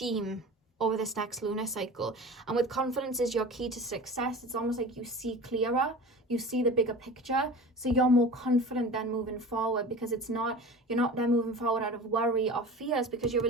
over this next lunar cycle. And with confidence is your key to success, it's almost like you see clearer, you see the bigger picture, so you're more confident then moving forward, because you're not then moving forward out of worry or fears, because you're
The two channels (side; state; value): both; normal; correlation 0.36